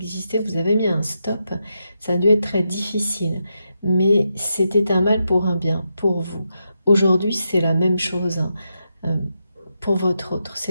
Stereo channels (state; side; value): inverted; both; correlation -0.85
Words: vous avez mis un stop, ça a dû être très difficile. Mais c'était un mal pour un bien, pour vous. Aujourd'hui, c'est la même chose, hein, pour votre autre.